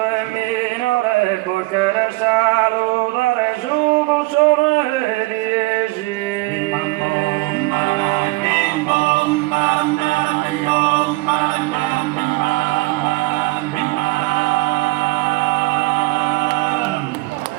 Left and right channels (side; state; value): left; quieter; 22.4 dB